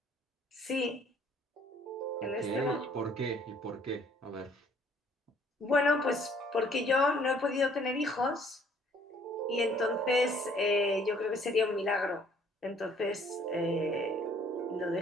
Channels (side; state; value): both; normal; correlation 0.60